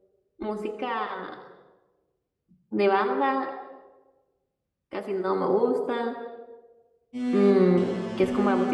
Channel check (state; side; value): identical; both; correlation 1.00